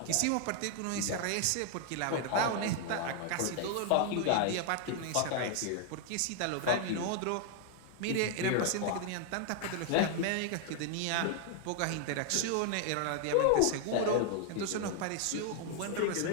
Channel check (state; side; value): different; both; correlation 0.00